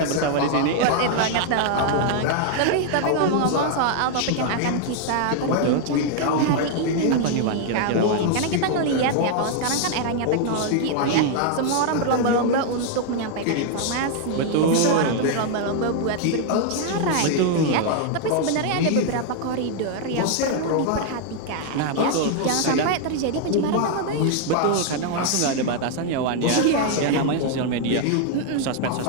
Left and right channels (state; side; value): different; both; correlation 0.00